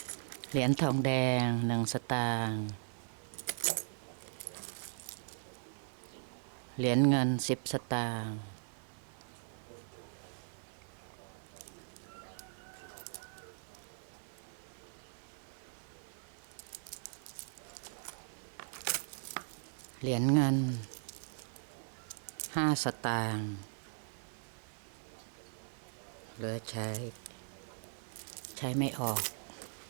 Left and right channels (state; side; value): silent; left; 52 dB below the other